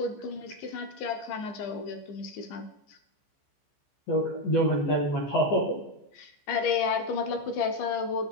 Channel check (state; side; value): late; right; 14 ms